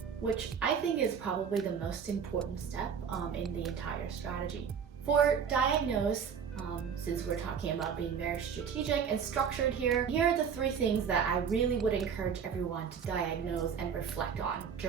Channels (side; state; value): left; quieter; 7.1 dB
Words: which I think is probably the most important step in the entire strategy. For diagnose, since we're talking about being very strategic and structured here are the 3 things that I really would encourage everyone to diagnose and reflect on